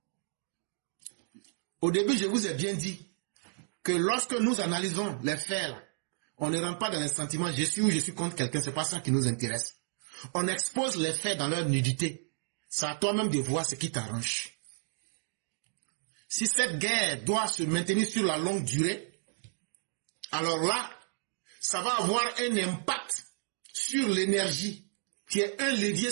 Au début, je vous ai bien dit que lorsque nous analysons les faits là, on ne rentre pas dans les sentiments, je suis ou je suis contre quelqu'un, c'est pas ça qui nous intéresse. On expose les faits dans leur nudité. C'est à toi-même de voir ce qui t'arrange. Si cette guerre doit se maintenir sur la longue durée, alors là, ça va avoir un impact sur l'énergie, qui est un levier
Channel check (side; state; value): left; silent; digital silence